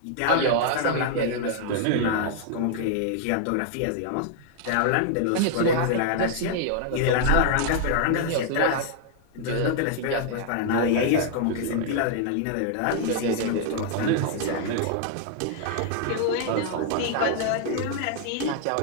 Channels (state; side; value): different; both; correlation 0.00